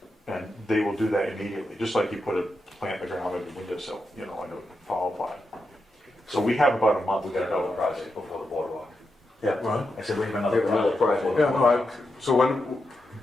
And they will do that immediately, just like you put a plant in the ground in the windowsill, you know, in a fall pot. So we have about a month. We got another project before the boardwalk. Yeah. What? I said we have another We have another project. project. Yeah, no, so when,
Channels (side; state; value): both; normal; correlation 0.86